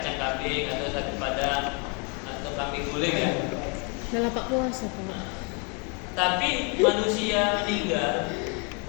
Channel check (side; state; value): right; quieter; 34.8 dB